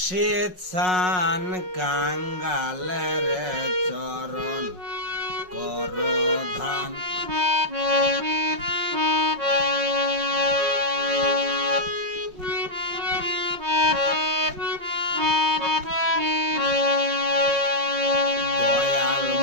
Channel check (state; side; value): late; left; 5.5 ms